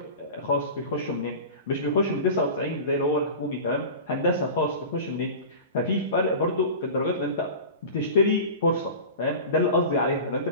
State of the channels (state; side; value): inverted; both; correlation -0.34